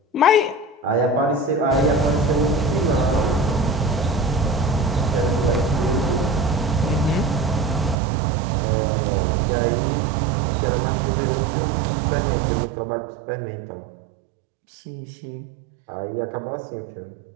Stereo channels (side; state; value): left; drops out; at 8.0 s